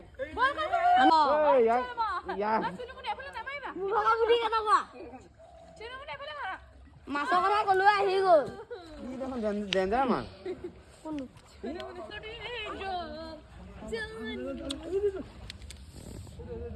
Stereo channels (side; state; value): both; identical; correlation 1.00